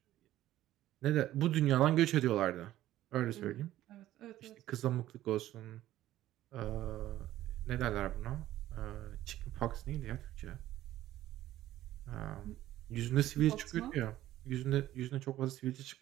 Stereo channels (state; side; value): quieter; left; 14.1 dB